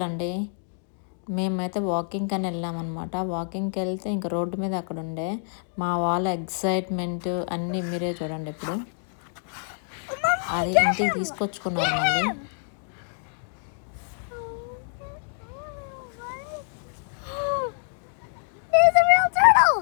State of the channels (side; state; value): right; silent; digital silence